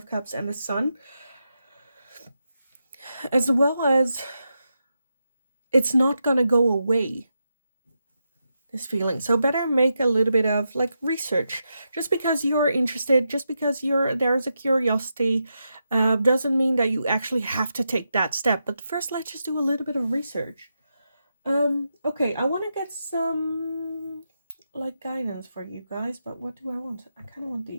Cups and the Sun, as well as it's not gonna go away, this feeling. So better make a little bit of like research. Just because you're interested, just because there's a curiosity, doesn't mean that you actually have to take that step. But first, let's just do a little bit of research. Okay, I want to get some like guidance for you guys, but what do I want? I kind of want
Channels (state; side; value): inverted; both; correlation -0.86